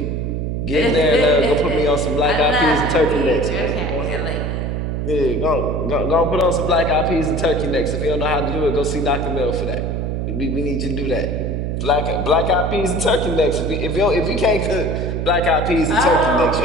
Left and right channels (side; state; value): right; noise; hum, 2 dB below the sound